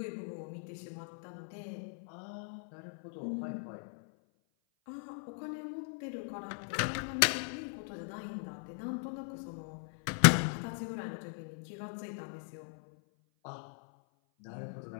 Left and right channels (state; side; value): silent; right; 52 dB below the other